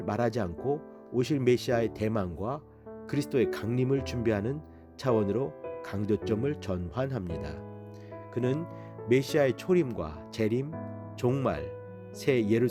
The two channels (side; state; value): both; identical; correlation 1.00